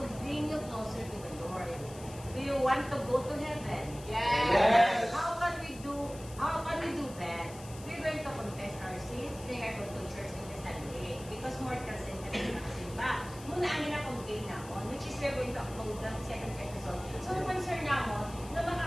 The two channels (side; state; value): left; noise; hiss, 17 dB below the sound